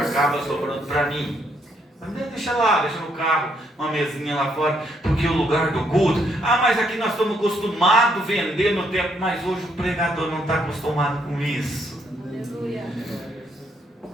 sobrando para mim. Mas deixa lá, deixa no carro, uma mesinha lá fora, porque o lugar do culto, mas aqui nós estamos acostumados a vender no tempo, mas hoje o pregador não está acostumado com isso. Aleluia.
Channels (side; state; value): both; normal; correlation 0.73